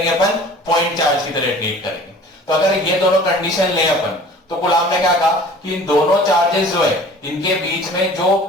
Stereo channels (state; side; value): normal; both; correlation 0.46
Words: अपन? पॉइंट चार्ज की तरह ट्रीट करेंगे। तो अगर ये दोनों कंडीशन ले अपन, तो कूलम ने क्या कहा कि इन दोनों चार्जेस जो है इनके बीच में जो